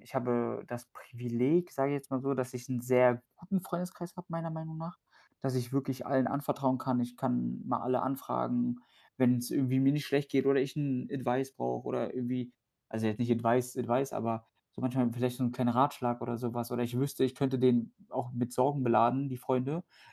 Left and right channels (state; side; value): identical; both; correlation 1.00